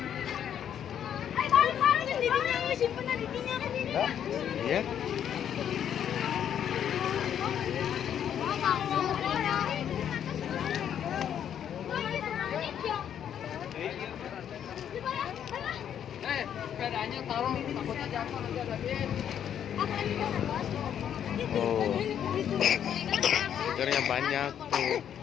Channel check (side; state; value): right; quieter; 9.3 dB